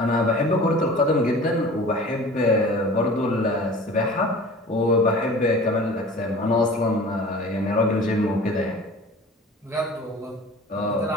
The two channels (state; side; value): normal; both; correlation 0.42